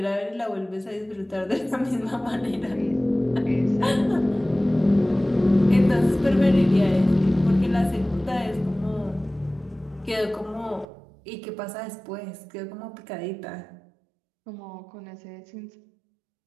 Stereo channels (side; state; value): left; drops out; at 10.9 s